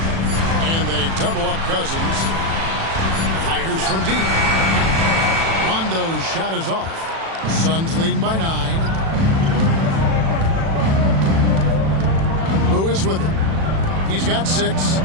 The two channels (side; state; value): left; late; 36 ms